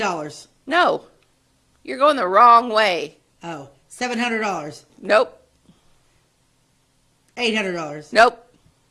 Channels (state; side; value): identical; both; correlation 1.00